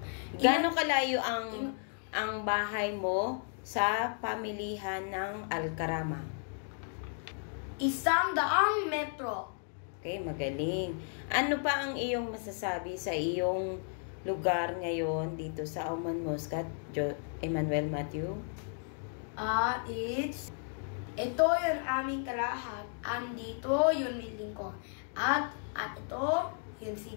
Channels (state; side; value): silent; right; 55 dB below the other